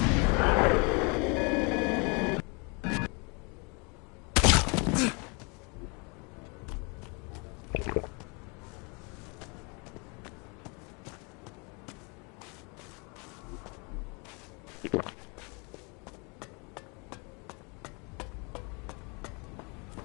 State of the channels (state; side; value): quieter; right; 32.0 dB